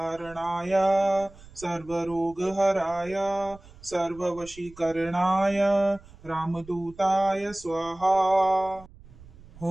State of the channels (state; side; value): noise; right; rumble, 21 dB below the sound